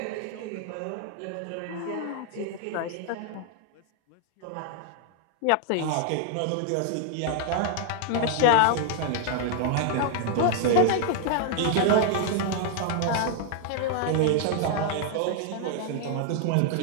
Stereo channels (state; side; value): different; both; correlation 0.00